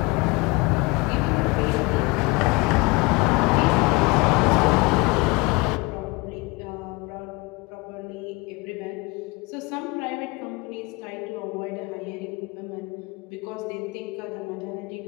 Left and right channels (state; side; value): quieter; right; 25.6 dB